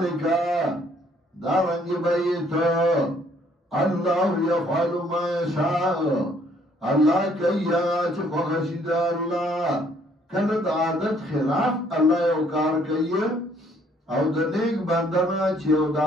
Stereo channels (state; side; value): normal; both; correlation 0.64